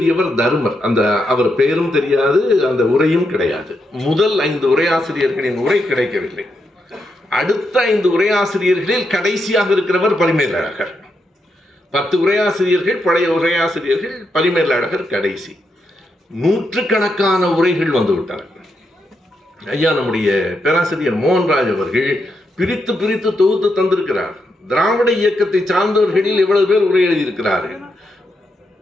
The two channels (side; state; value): both; normal; correlation 0.82